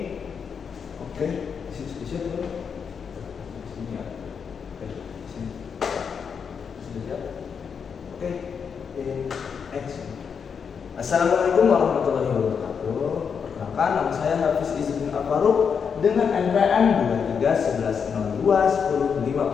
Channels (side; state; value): right; quieter; 6.5 dB